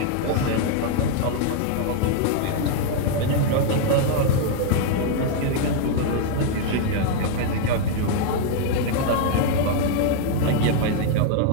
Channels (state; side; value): different; both; correlation 0.00